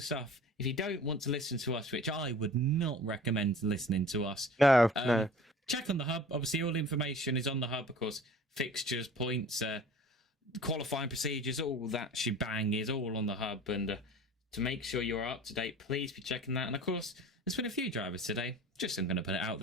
stuff, if you don't want to listen to us, which I would not recommend listening to us. No. Check on the hub. Obviously, all the information is on the hub, of course. Fixtures, points, qualifying procedures, all that shebang is all on the hub. And to make sure you're up to date, please be checking that. And of course, there's been a few drivers today. Just I'm going to put it out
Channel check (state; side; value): normal; both; correlation 0.43